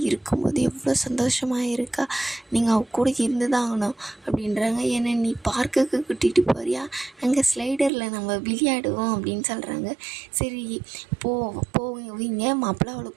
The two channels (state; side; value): drops out; left; at 7.9 s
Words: இருக்கும்போது எவ்வளோ சந்தோஷமாக இருக்கா, நீங்கள் அவ கூட இருந்து தான் ஆகணும் அப்படின்றாங்க. ஏன்னா நீ பார்க்குக்கு கூட்டிகிட்டு போறியா, அங்கே ஸ்லைடரில் நம்ம விளையாடுவோம் அப்படின்னு சொல்கிறாங்க. சரி போவீங்க மாப்பிள்ளை, அவளை